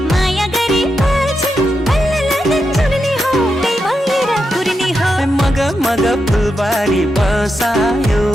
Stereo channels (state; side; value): normal; both; correlation 0.86